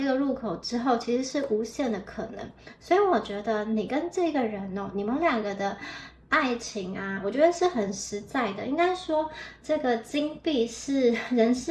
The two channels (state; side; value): identical; both; correlation 1.00